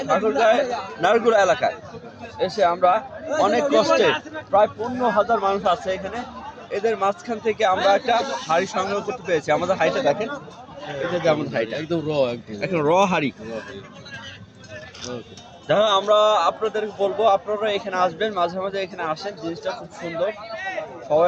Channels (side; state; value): both; identical; correlation 1.00